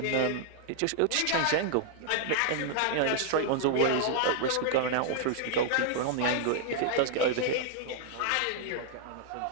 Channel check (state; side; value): different; both; correlation 0.00